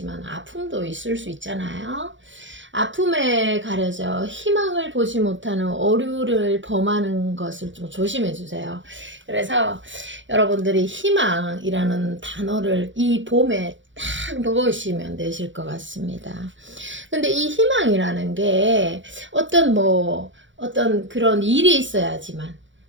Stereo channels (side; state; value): left; late; 0.55 ms